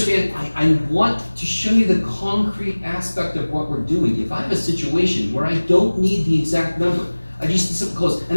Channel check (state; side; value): inverted; both; correlation -1.00